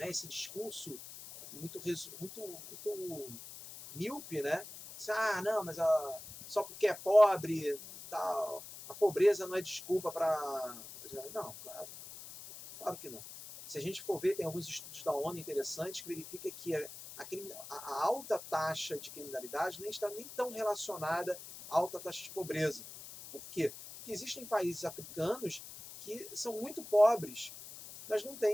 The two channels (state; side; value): noise; left; hiss, 13 dB below the sound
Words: esse discurso muito míope, né? Não, mas só porque é pobre, tal, a pobreza não é desculpa para... Não, claro que não. Se a gente for ver, tem alguns estudos da ONU interessantes que verificam que a alta taxa de criminalidade nem está nem tão relacionada à alta taxa de pobreza. Por quê? Porque existem países africanos que são muito pobres, mas não